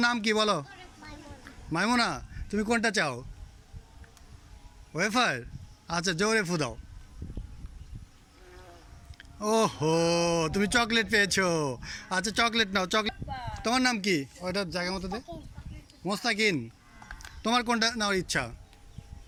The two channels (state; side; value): identical; both; correlation 1.00